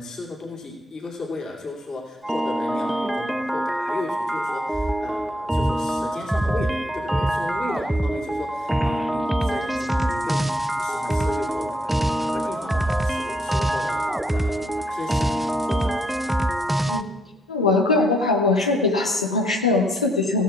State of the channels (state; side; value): normal; both; correlation 0.72